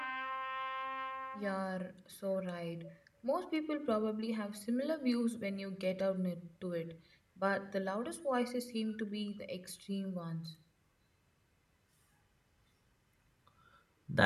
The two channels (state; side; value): identical; both; correlation 1.00